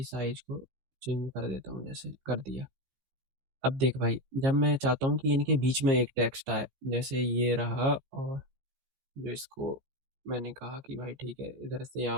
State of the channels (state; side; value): late; left; 15 ms